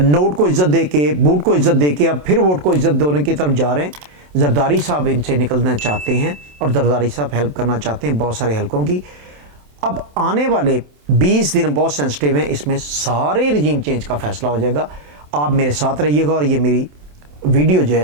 को इज्जत दे के, बूट को इज्जत दे के अब फिर वोट को इज्जत देने की तरफ जा रहे हैं। जरदारी साहब इनसे निकलना चाहते हैं, और जरदारी साहब हेल्प करना चाहते हैं बहुत सारे हलकों की। अब आने वाले 20 दिन बहुत सेंसिटिव हैं, इसमें सारे रजीम चेंज का फैसला हो जाएगा। आप मेरे साथ रहिएगा और ये मेरी वीडियो जो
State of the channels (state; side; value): late; left; 27 ms